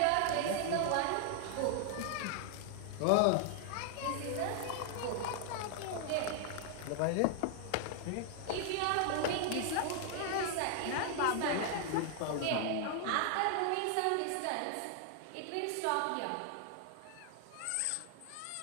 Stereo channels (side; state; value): both; different; correlation 0.00